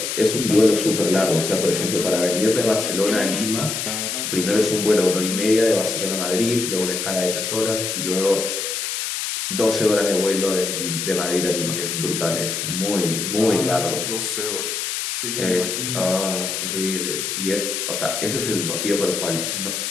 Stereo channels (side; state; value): left; noise; hiss, 3 dB below the sound